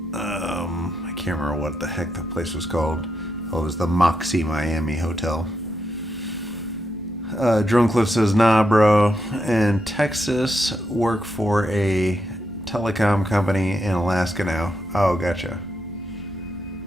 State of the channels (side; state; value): both; normal; correlation 0.82